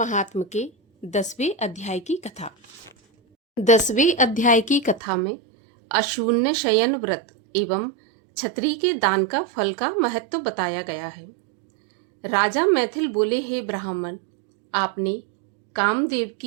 के 10वें अध्याय की कथा। 10वें अध्याय की कथा में अशून्य शयन व्रत एवं छत्री के दान का फल का महत्व बताया गया है। राजा मैथिल बोले, हे ब्राह्मण, आपने कामदेव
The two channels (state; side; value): drops out; left; at 5.0 s